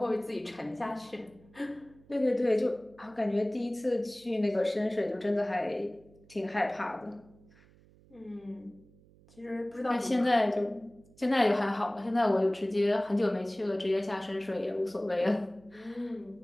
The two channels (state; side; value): noise; right; hum, 27 dB below the sound